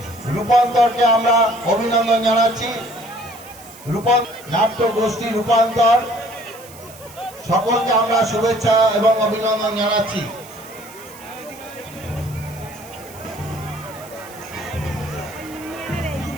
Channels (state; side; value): noise; right; hiss, 20 dB below the sound